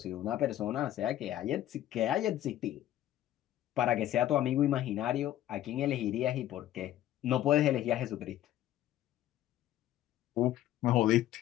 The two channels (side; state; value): right; quieter; 13.1 dB